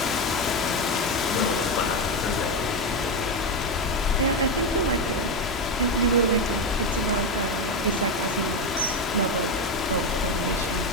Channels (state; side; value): normal; both; correlation 0.12